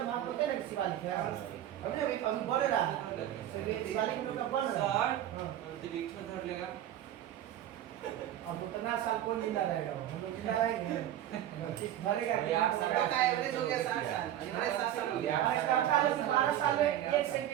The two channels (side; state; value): left; quieter; 11.8 dB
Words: आप होते ना शिवालिक है, अभी बढ़ रहा है, शिवालिक लोग का बन रहा है, अंतरिक्ष में धर लेगा। अब उतना साल कौन जिंदा रहेगा? हम लोग जिंदा रहेंगे, धरेगा का एवरेज हो गया 60 साल, हमारे 7 साल हो गया। 12 साल में 1